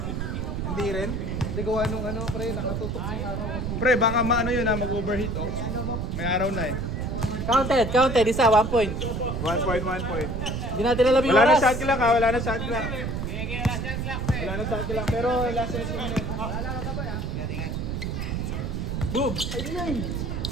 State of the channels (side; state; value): right; noise; rumble, 3 dB below the sound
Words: Hindi rin. Hindi gawa nung ano, pre, nakatutok ng araw kasi. Pre, baka maano yun mag-overheat oh. May araw na eh. Counted. Isa, 1 point. 1 point, 1 point. Hindi natin alam yung Wala na oras. shot clock ha, wala na shot clock. Wala na shot clock, pero last set ko na yan. Boom!